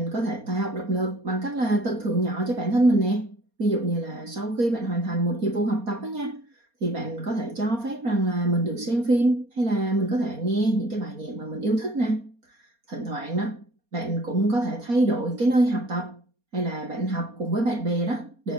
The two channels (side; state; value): left; late; 4.3 ms